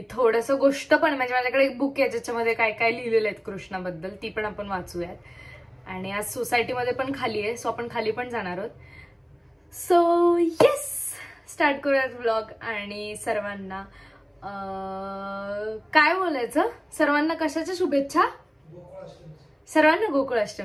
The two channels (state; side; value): identical; both; correlation 1.00